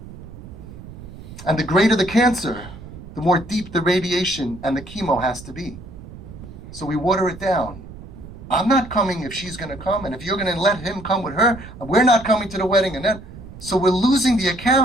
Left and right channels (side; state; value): right; noise; rumble, 15 dB below the sound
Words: And the greater the cancer, the more deep the radiation and the chemo has to be. So we water it down. I'm not coming if she's going to come, and if you're going to let him come with her, we're not coming to the wedding. And then, so we're losing the